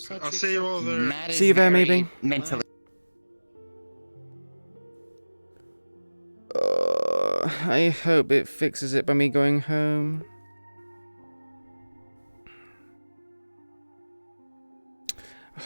I'll Sachi, see you all there. Matt See is you there, very maybe. mentally. I hope it fixes it by me going home.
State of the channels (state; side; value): inverted; both; correlation -1.00